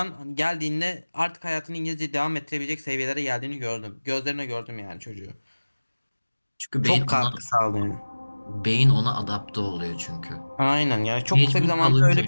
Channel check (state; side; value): inverted; both; correlation -1.00